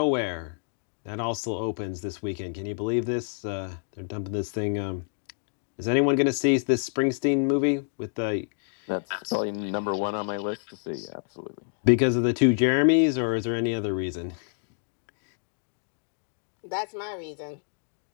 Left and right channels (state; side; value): silent; right; digital silence